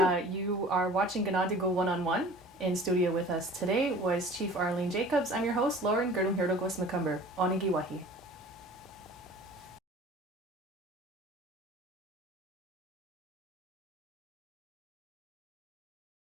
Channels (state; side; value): normal; both; correlation 0.45